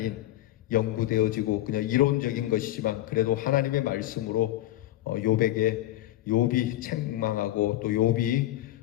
연구되어지고 그냥 이론적인 것이지만 그래도 하나님의 말씀으로 욥이 책망하고 또 욥이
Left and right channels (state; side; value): quieter; right; 14.7 dB